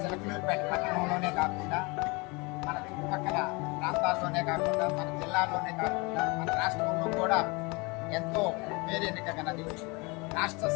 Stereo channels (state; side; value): quieter; right; 27.5 dB